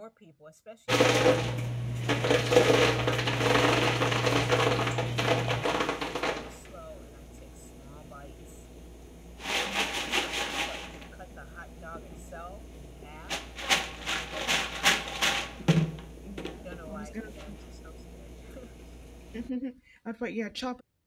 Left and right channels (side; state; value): both; identical; correlation 1.00